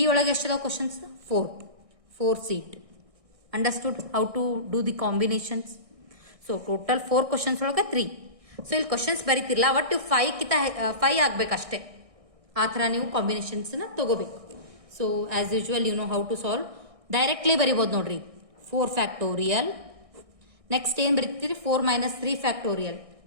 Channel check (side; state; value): left; late; 1.6 ms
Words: ಒಳಗ ಎಷ್ಟು ಅದಾವ questions 4C2. Understood how to do the combinations? So total 4 questions ಒಳಗ 3. So ಇಲ್ಲಿ questions ಬರೀತಿರಲ್ಲ ಒಟ್ಟು 5 ಕಿತ 5 ಆಗ್ಬೇಕಷ್ಟೇ. ಆ ಥರ ನೀವು ಕಾಂಬಿನೇಷನ್ಸ್ನ ತಗೋಬೇಕು. So as usual you know how to solve. Directly ಬರಿಬೋದು ನೋಡ್ರಿ 4 ಫ್ಯಾಕ್ಟೋರಿಯಲ್. ನೆಕ್ಸ್ಟ್ ಏನು ಬರೀತೀರಿ 4 ಮೈನಸ್ 3 ಫ್ಯಾಕ್ಟೋರಿಯಲ್.